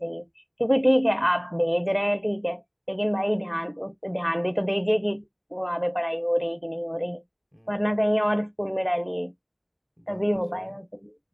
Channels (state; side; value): identical; both; correlation 1.00